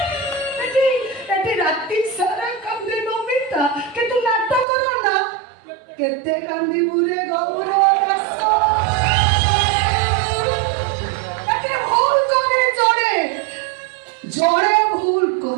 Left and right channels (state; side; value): drops out; left; at 4.7 s